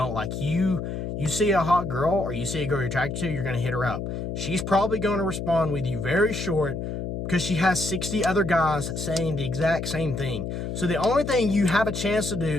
Like, you see a hot girl or you see a girl you're attracted to, you're going to hit her up. She's probably going to respond with you very short because she has 60 other guys saying the exact same thing. So the only thing you have a chance to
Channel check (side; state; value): left; noise; hum, 5 dB below the sound